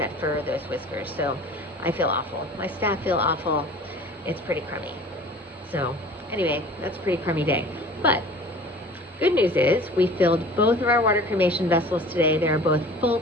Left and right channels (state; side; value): normal; both; correlation 0.44